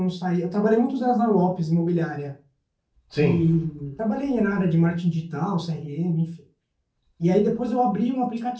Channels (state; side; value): identical; both; correlation 1.00